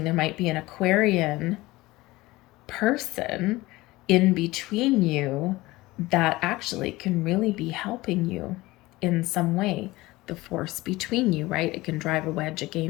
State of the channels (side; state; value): right; quieter; 19.7 dB